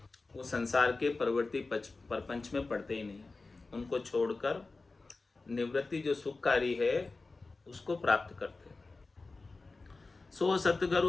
वो संसार के परवर्ती परपंच में पड़ते ही नहीं, उनको छोड़कर निवृत्ति जो सुखकारी है उसको प्राप्त करते। सो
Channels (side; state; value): right; quieter; 3.7 dB